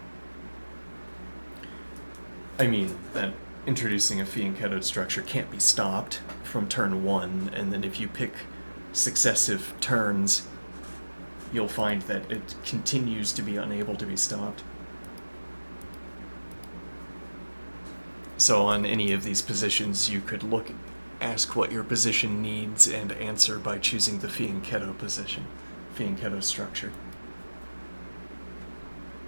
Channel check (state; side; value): inverted; both; correlation -1.00